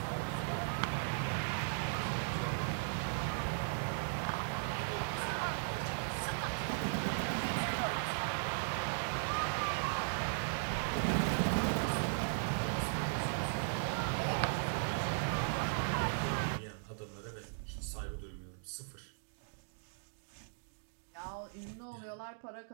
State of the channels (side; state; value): left; silent; digital silence